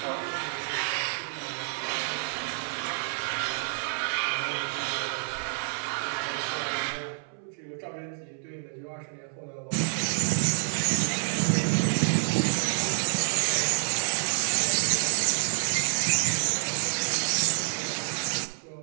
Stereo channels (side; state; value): left; silent; 59 dB below the other